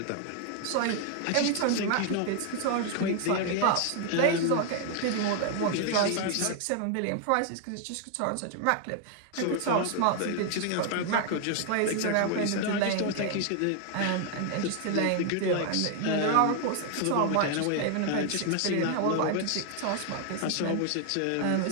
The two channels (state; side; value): different; both; correlation 0.00